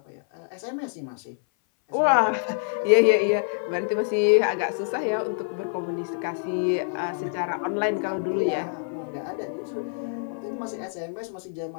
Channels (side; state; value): right; silent; 59 dB below the other